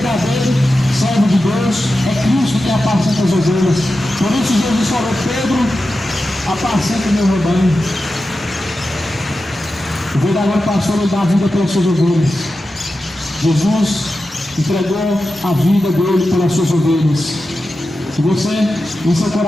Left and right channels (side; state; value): both; normal; correlation 0.92